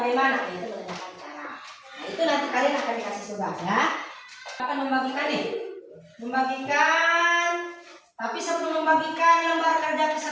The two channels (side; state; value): both; identical; correlation 1.00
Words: Itu menanyakan cara. Nah, itu nanti kalian akan dikasih tugas ya. Akan membagikan nih. Membagikan. Tapi sebelum membagikan lembar kerja